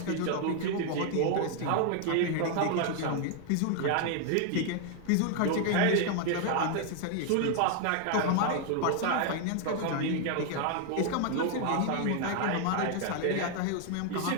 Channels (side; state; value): both; different; correlation 0.00